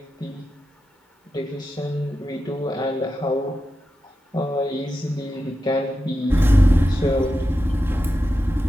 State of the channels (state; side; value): normal; both; correlation 0.90